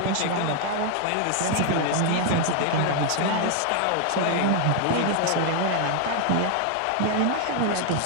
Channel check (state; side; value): different; both; correlation 0.00